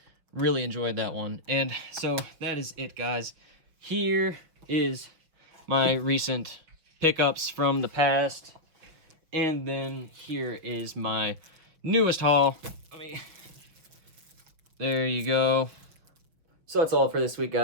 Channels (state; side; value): late; left; 6.3 ms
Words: Really enjoyed that one. And so that is it, guys. Here is my recent pickups from the past. And then here is my newest haul. There you go. So that's all for this week,